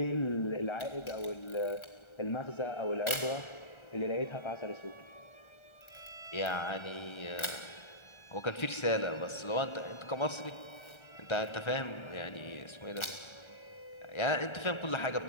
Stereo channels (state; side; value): late; right; 1.3 ms